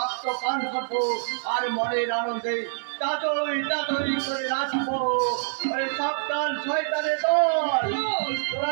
পান করবো আর মনের আনন্দে তাতই করে নাচবো। ওরে সাবধান শয়তানের দল, তোরা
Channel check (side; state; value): left; silent; digital silence